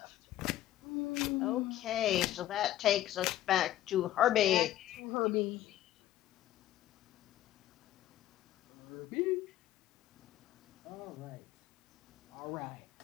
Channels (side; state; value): right; quieter; 13.4 dB